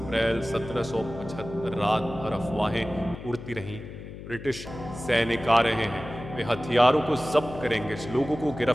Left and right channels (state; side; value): noise; left; hum, 12 dB below the sound